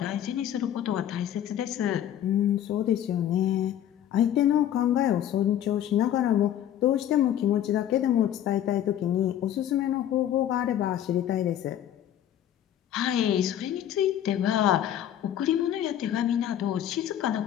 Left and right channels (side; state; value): right; quieter; 10.9 dB